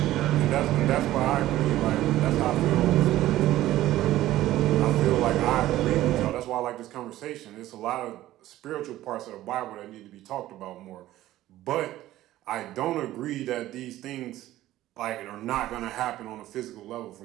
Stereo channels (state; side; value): quieter; left; 14.8 dB